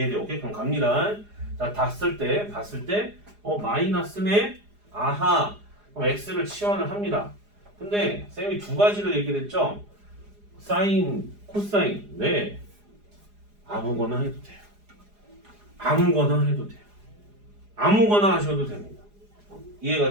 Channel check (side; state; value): left; late; 4.8 ms